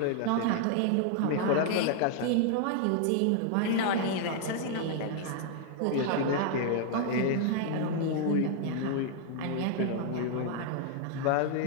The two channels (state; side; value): different; both; correlation -0.01